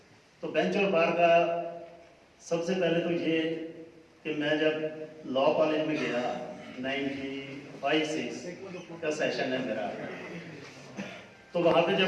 तो बेंच और बार का सबसे पहले तो ये कि मैं जब लॉ कॉलेज में गया 95-6 का सेशन है मेरा, तो वहाँ पे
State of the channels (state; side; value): identical; both; correlation 1.00